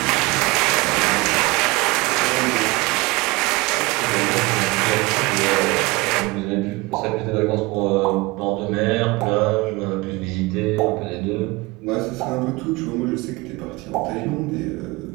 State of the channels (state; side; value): quieter; left; 23.6 dB